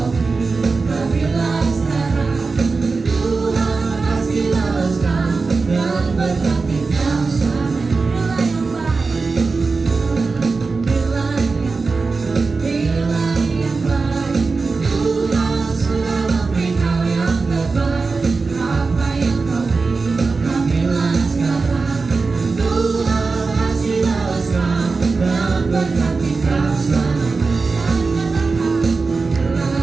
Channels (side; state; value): left; quieter; 4.2 dB